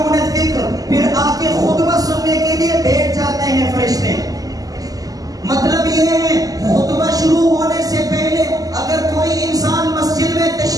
الذِّكْرَ، پھر آ کے خطبہ سننے کے لیے بیٹھ جاتے ہیں فرشتے. مطلب یہ ہے خطبہ شروع ہونے سے پہلے اگر کوئی انسان مسجد میں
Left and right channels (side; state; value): left; late; 0.17 ms